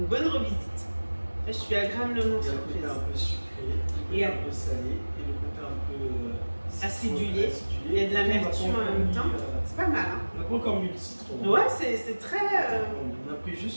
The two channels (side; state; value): both; inverted; correlation -1.00